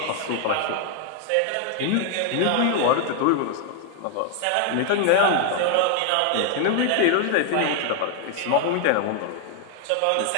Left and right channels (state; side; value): different; both; correlation 0.00